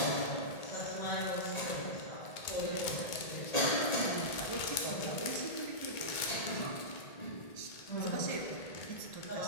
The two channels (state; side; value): late; right; 1.8 ms